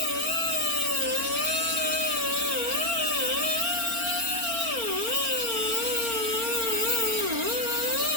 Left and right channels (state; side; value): late; left; 4.4 ms